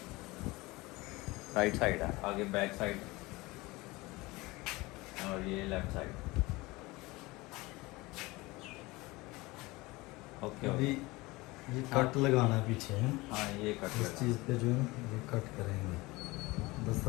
है आगे बैक साइड और ये लेफ्ट साइड। ओके अभी ये कट लगाना है पीछे है। हाँ ये कट इस चीज़ पे जो है ये कट करेंगे।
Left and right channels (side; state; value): right; quieter; 22.0 dB